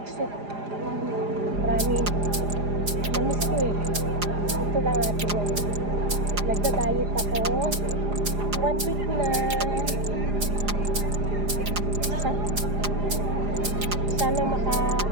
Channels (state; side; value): late; left; 4.9 ms